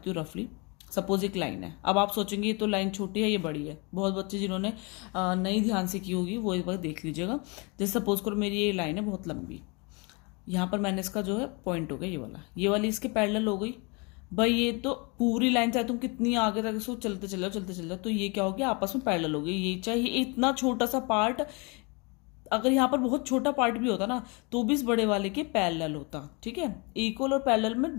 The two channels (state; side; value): quieter; right; 30.2 dB